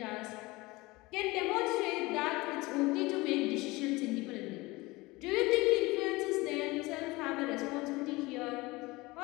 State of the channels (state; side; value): quieter; right; 22.0 dB